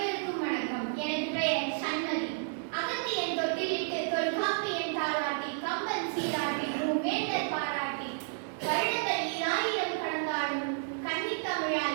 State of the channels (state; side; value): silent; left; digital silence